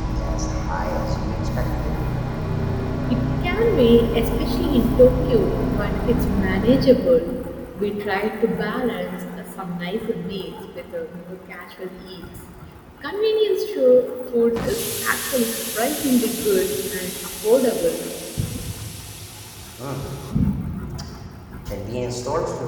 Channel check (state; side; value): identical; both; correlation 1.00